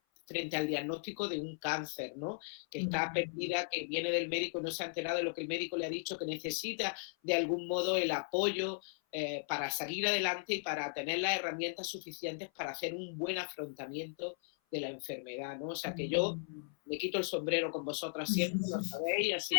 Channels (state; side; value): silent; right; 53 dB below the other